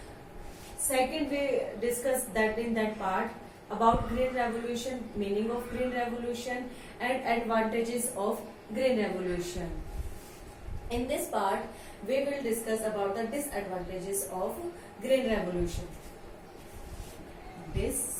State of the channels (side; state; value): both; identical; correlation 1.00